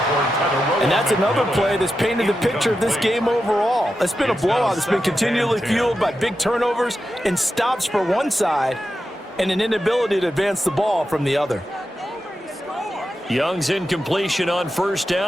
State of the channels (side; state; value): both; normal; correlation 0.89